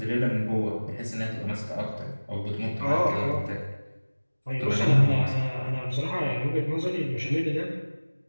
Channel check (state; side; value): inverted; both; correlation -1.00